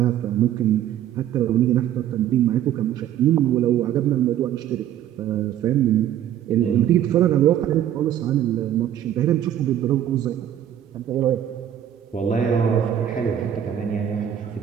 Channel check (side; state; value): left; quieter; 10.8 dB